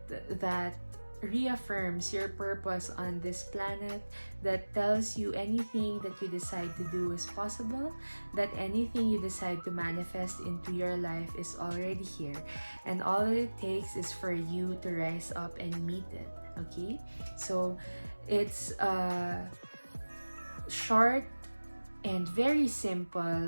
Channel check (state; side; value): inverted; both; correlation -1.00